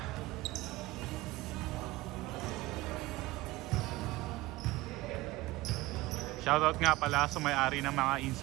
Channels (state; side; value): quieter; left; 19.3 dB